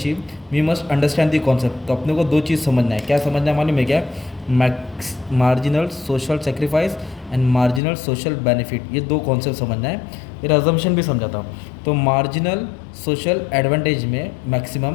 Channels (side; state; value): right; drops out; at 7.8 s